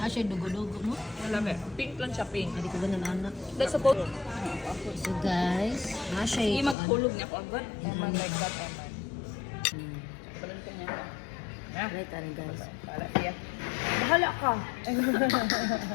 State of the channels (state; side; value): drops out; right; at 6.8 s